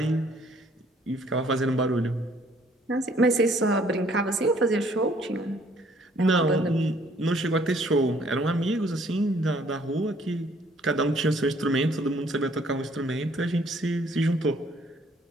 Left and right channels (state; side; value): normal; both; correlation 0.61